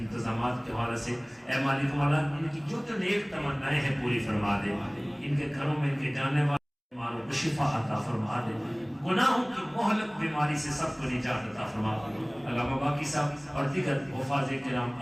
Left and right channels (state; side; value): identical; both; correlation 1.00